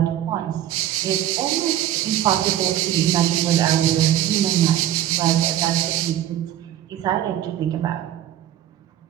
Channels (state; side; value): quieter; left; 12.1 dB